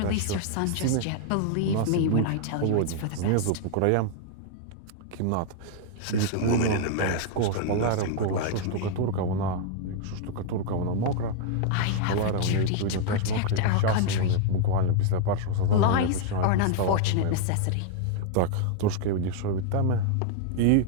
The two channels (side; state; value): both; different; correlation 0.00